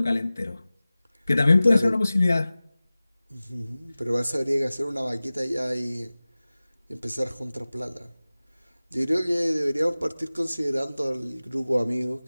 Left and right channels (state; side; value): inverted; both; correlation -0.98